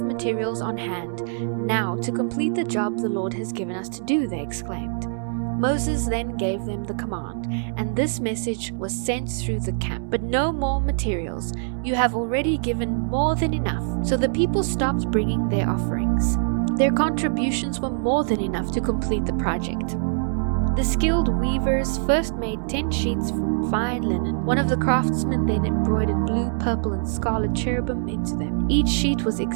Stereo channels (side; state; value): left; silent; 63 dB below the other